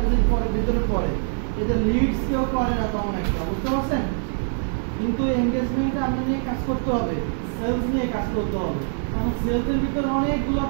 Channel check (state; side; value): silent; left; digital silence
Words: পরে ভিতরে পড়ে। এদের লিডস কেউ করে না তেমন একটা। বুঝতে পারছেন? কিন্তু এনগেজমেন্টে আপনার নিয়ে কাজ করতে হবে, সেলস নিয়ে কাজ করতে হবে। কারণ সেলসের ভিতরে অনেকগুলো